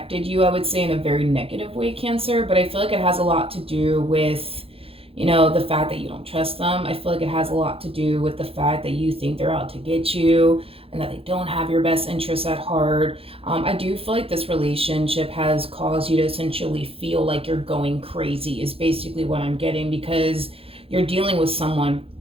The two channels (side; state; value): left; late; 0.27 ms